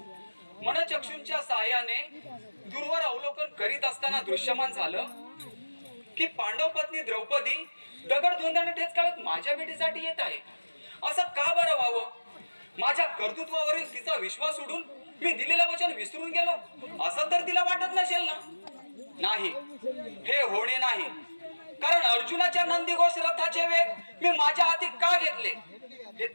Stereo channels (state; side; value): inverted; both; correlation -1.00